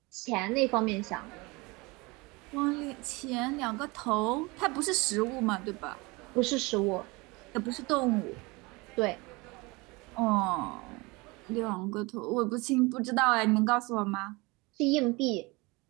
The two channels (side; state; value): left; quieter; 25.1 dB